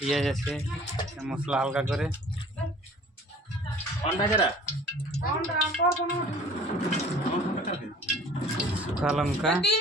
আছে, মশলা হালকা করে, শুকা লঙ্কা।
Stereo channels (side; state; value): both; normal; correlation 0.49